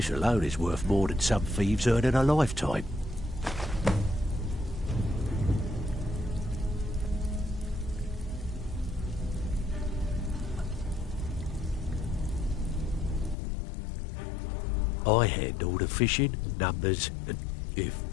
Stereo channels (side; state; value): right; drops out; at 13.4 s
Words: alone is worth more than some thieves earn in a lifetime. I handle the fishing, numbers, and if